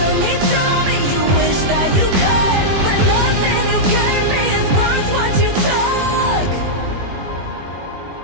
to me, tell me you wish that you could, but nothing you gave me is worth what you took.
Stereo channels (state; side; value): late; left; 21 ms